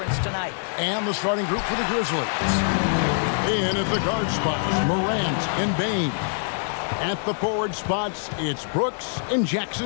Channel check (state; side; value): silent; right; digital silence